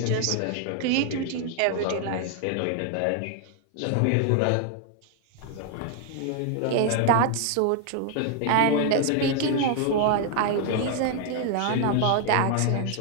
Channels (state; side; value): different; both; correlation 0.00